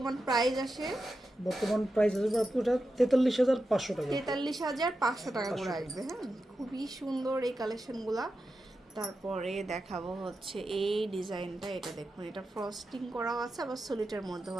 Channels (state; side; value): normal; both; correlation 0.90